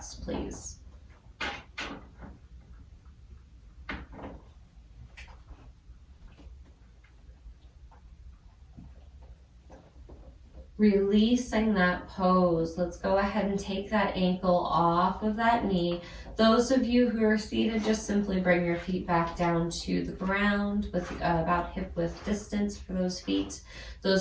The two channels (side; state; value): both; identical; correlation 1.00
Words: please. Releasing that pose. Let's go ahead and take that ankle off of that knee. Those of you who are seated, just simply bring your feet back down to the ground with about hip width distance for those feet.